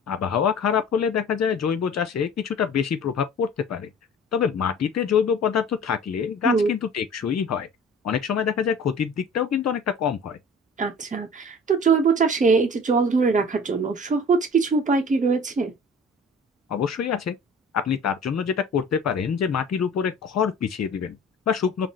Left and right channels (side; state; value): both; normal; correlation 0.43